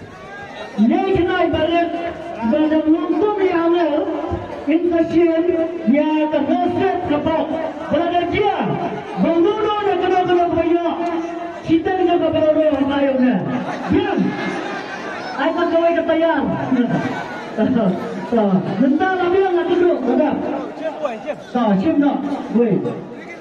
nên cái này bà lên, bà làm luôn tốt đi hàng này, in ta xem, nhà ta nói xét cả bọc, bà làm chia, bà luôn luôn là cái nào bây giờ, chỉ tên cái bà bảo rồi hôm nay ông này, biết, ai ta coi cái tay ăn, người ta làm việc là cái được, được không? Xem nó, quay.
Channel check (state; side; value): identical; both; correlation 1.00